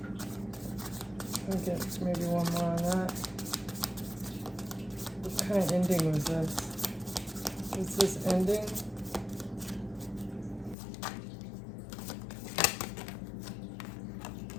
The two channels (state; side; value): drops out; right; at 10.8 s